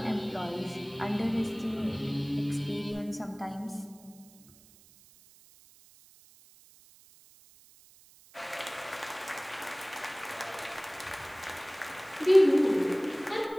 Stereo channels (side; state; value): right; noise; hiss, 25 dB below the sound